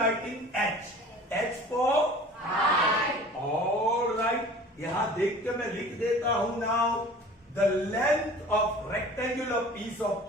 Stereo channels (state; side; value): normal; both; correlation 0.44